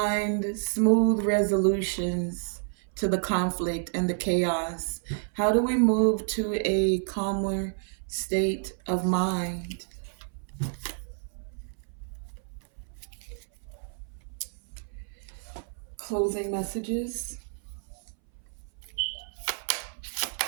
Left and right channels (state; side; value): silent; left; 58 dB below the other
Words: smooth resolutions to the conflict and the chaos? How do we move to a calmer state of mind? Closing messages.